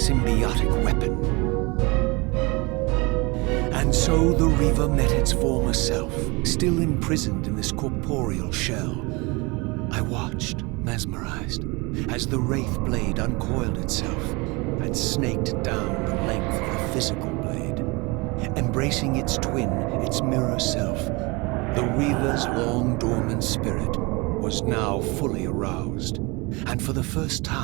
weapon. And so the Reaver met its former self, still imprisoned in this corporeal shell. I watched, mesmerized, as the Wraith blade uncoiled itself and snaked down the length of the physical blade. Embracing its twin, its mirror self, the Reaver's long-dormant spirit was now fully aroused. And for the first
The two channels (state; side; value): quieter; left; 26.4 dB